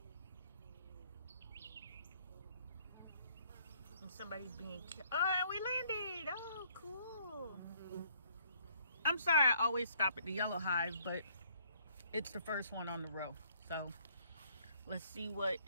And somebody's being killed. Oh, and we landed. Oh, cool. I'm sorry I always stop at the yellow hive, but it's the first one on the row. So let's see what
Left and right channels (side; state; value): both; inverted; correlation -0.65